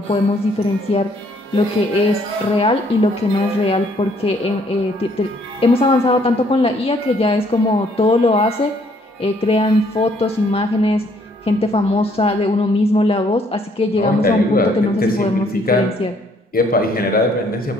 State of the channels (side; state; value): both; normal; correlation 0.65